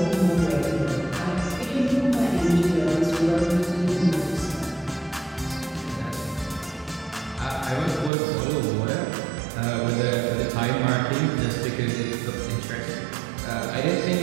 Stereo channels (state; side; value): drops out; left; at 8.1 s